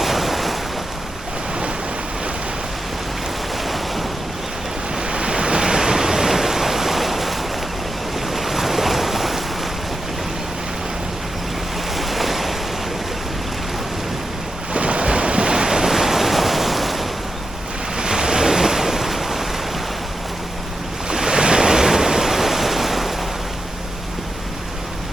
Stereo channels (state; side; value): normal; both; correlation 0.88